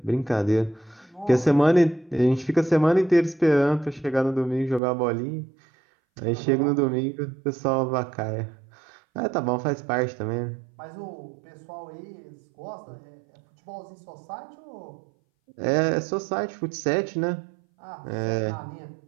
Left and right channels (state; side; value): drops out; left; at 4.8 s